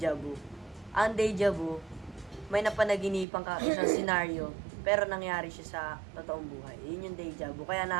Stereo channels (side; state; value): left; drops out; at 3.2 s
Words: vu. Ang deja vu, may napanaginipan ka isang scenario, pero nangyari siya sa totoong buhay. Yun yung deja vu. Kaya